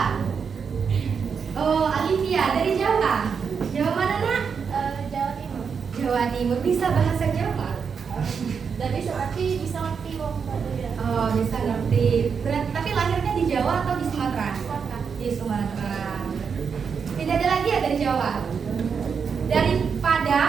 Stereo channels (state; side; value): quieter; left; 6.2 dB